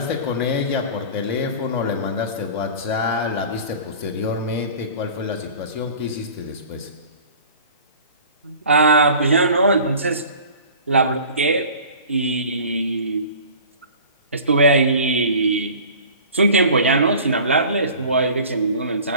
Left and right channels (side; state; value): both; inverted; correlation -0.43